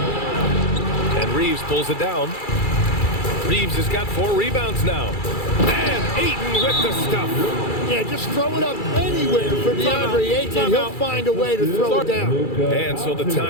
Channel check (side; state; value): right; late; 2.3 ms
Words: And Reeves pulls it down. Reeves has got 4 rebounds now. And Ayton with the stuff. Yeah, just throw it up anywhere for DeAndre Ayton, and he'll find a way to throw it down. And so the